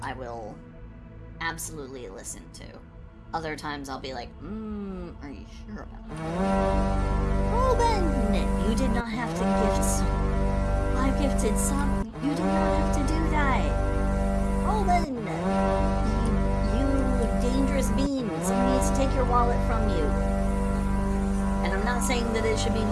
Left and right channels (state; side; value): identical; both; correlation 1.00